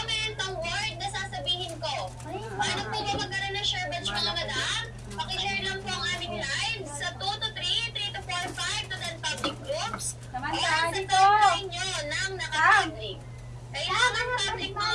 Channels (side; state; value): both; identical; correlation 1.00